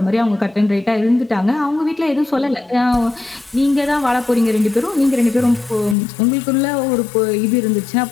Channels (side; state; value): right; drops out; at 6.0 s